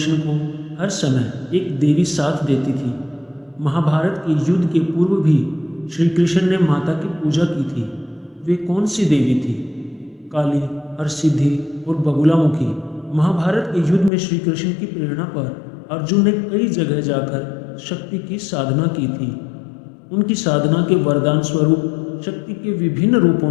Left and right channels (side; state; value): right; drops out; at 14.1 s